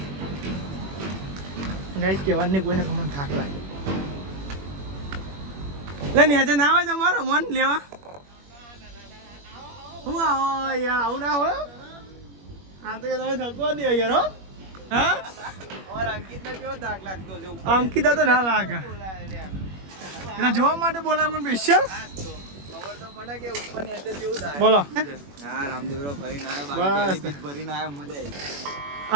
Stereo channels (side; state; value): left; late; 21 ms